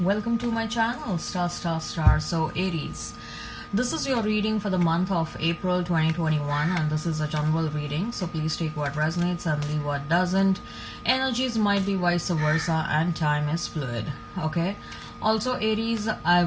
to my channel Star. So Aries, this is your reading for the month of April 2021 and this is a general reading. So please take what resonates and leave what doesn't. Energies might be vice versa and time is fluid. Okay. Also Aries, I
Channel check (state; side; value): identical; both; correlation 1.00